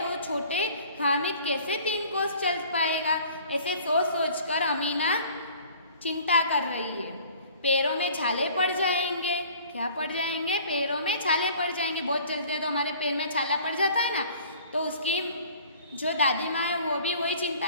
छोटे हामिद कैसे 3 कोस चल पाएगा? ऐसे सोच सोच कर अमीना चिंता कर रही है। पैरों में छाले पड़ जाएंगे। क्या पड़ जाएंगे? पैरों में छाले पड़ जाएंगे। बहुत चलते हैं तो हमारे पैर में छाला पड़ जाता है ना, तो उसकी जो दादी माँ है वो भी वही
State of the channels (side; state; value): both; inverted; correlation -0.50